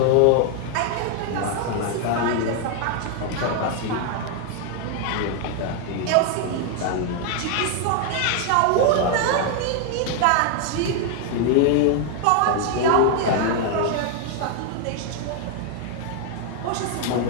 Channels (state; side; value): different; both; correlation 0.00